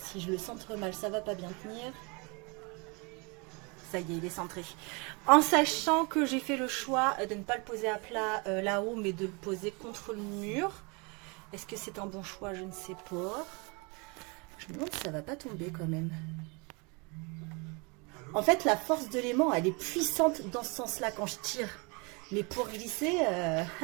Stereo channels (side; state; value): left; quieter; 30.4 dB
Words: je le centre mal, ça va pas bien tenir. Ça y est, il est centré. En sachant que j'ai fait le choix de ne pas le poser à plat là-haut, mais de le poser contre le mur. Est-ce que c'est un bon choix? Je ne sais pas. Je me demande si ça va pas tomber quand même. En fait, la force de l'aimant, elle est puissante dans ce sens-là quand je tire. Mais pour glisser,